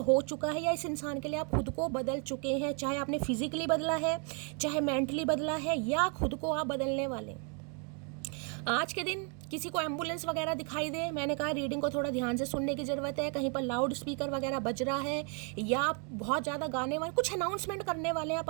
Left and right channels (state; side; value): quieter; left; 38.3 dB